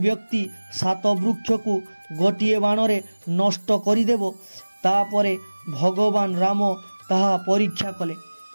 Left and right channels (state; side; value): inverted; both; correlation -1.00